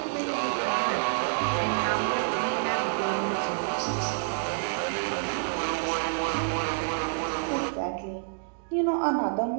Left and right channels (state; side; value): silent; left; digital silence